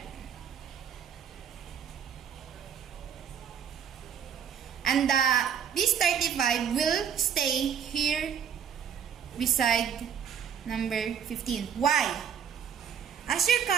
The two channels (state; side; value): quieter; left; 8.0 dB